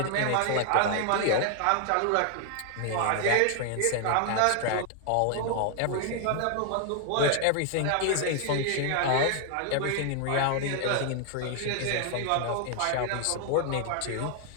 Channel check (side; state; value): both; different; correlation 0.00